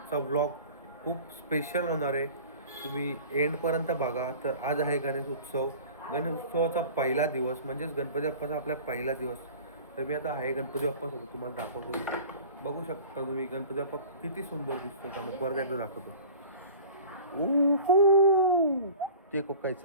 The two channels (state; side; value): inverted; both; correlation -0.42